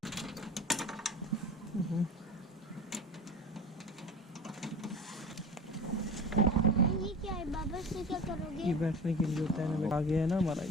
क्या है बाबा, इससे क्या करोगे? ये बैठने के लिए होता है ना, आगे है ना हमारा,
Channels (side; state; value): both; normal; correlation 0.35